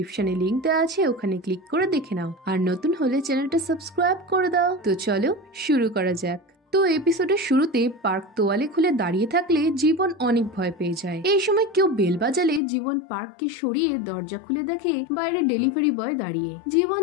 লিংক দেওয়া আছে, ওখানে ক্লিক করে দেখে নাও। আর নতুন হলে চ্যানেলটা সাবস্ক্রাইব করে দাও। তো চলো শুরু করা যাক। তো এপিসোডের শুরুতে পার্ক তোয়ালে খুলে দাঁড়িয়ে থাকলে জীবন অনেক ভয় পেয়ে যায়। এই সময় কেউ বেল বাজালে জীবন পার্ককে সরিয়ে দরজা খুলে দেখে বাইরে ডেলিভারি বয় দাঁড়িয়ে। জীবন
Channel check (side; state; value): right; drops out; at 12.6 s